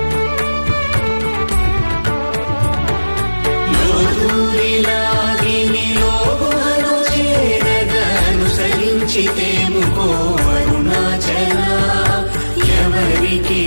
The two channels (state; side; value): inverted; both; correlation -1.00